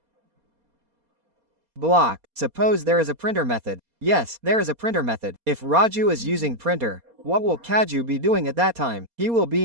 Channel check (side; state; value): left; late; 4.2 ms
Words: Block. Suppose there is a printer method. Yes, there is a printer method. If Raju is using printer, what will Kaju be doing at that time? He will